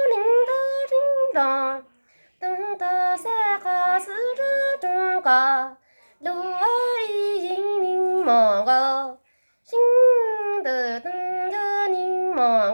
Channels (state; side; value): inverted; both; correlation -1.00